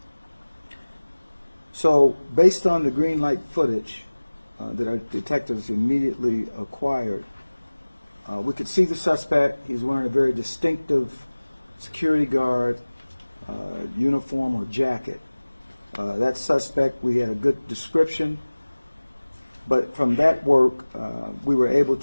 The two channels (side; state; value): both; inverted; correlation -1.00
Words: So, based on the green light footage that our detectives immediately acquired, we could see the suspect. He's wearing a very distinctive security guard uniform or jacket. That suspect, we had a good description, but from that work, we were able